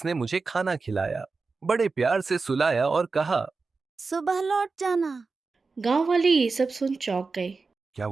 मुझे खाना खिलाया, बड़े प्यार से सुलाया और कहा, सुबह लौट जाना। गांव वाले ये सब सुन चौंक गए। क्या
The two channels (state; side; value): quieter; left; 4.2 dB